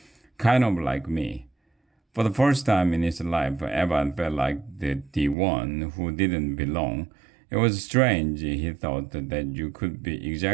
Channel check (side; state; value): left; drops out; at 5.4 s